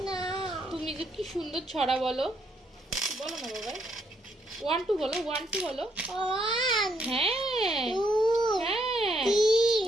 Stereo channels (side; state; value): both; normal; correlation 0.74